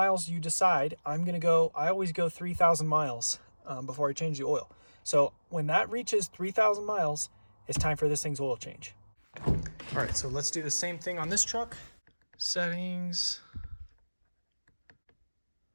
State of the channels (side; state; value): both; inverted; correlation -1.00